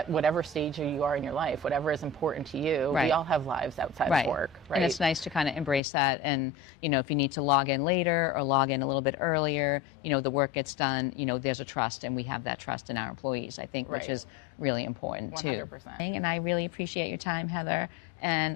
whatever stage you are in your life, whatever is important to you. Right. We all have lives outside Right. of work, right? And it's nice to kind of embrace that. And if you need to log in later or log in a little bit earlier, the work gets done. There's a trust, and we have that trust in our employees, I think, Right. which is really important too. 100%. And I really appreciate your time, Heather,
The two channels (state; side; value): drops out; right; at 5.8 s